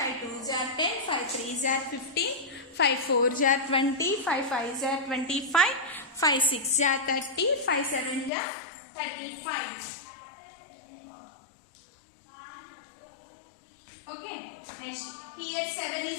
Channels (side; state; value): right; drops out; at 8.3 s